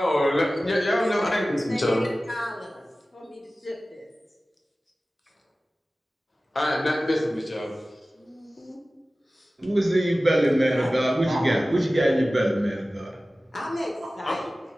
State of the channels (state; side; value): normal; both; correlation 0.96